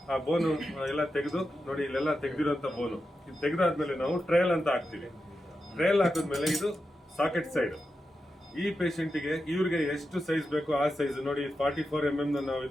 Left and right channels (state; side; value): normal; both; correlation 0.89